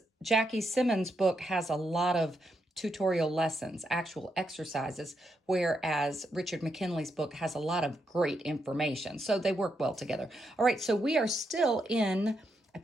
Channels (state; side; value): normal; both; correlation 0.81